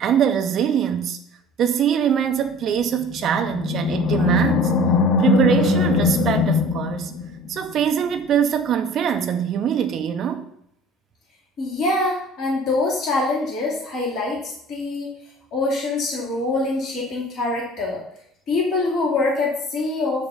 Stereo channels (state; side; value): normal; both; correlation 0.45